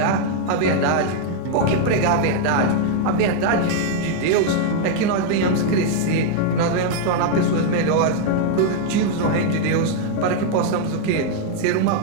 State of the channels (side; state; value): both; different; correlation 0.00